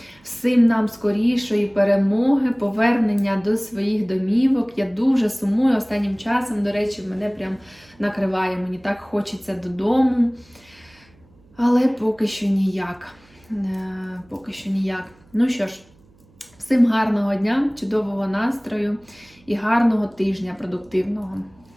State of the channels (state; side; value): noise; right; hum, 30 dB below the sound